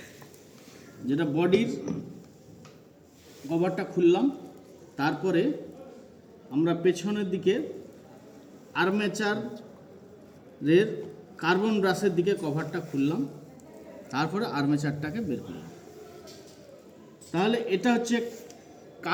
যেটা বডির কভারটা খুললাম, তারপরে আমরা পেছনের দিকে আর্মেচারের কার্বন ব্রাশের দিকে কভারটা খুললাম, তারপরে আর্মেচারটাকে বের করলাম। তাহলে এটা হচ্ছে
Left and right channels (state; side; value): identical; both; correlation 1.00